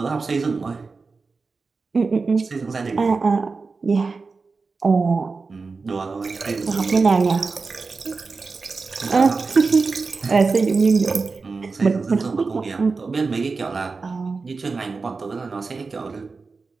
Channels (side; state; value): left; quieter; 4.3 dB